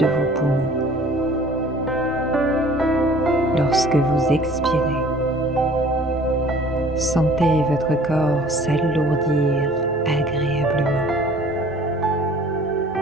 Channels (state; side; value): normal; both; correlation 0.51